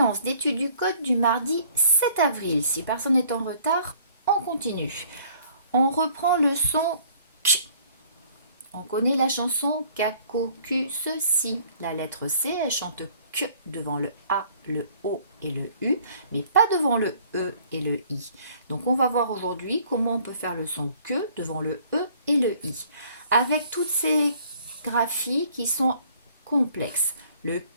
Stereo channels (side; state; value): both; inverted; correlation -0.58